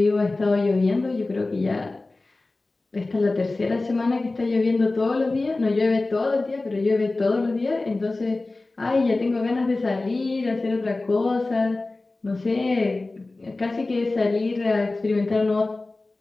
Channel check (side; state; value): right; quieter; 3.2 dB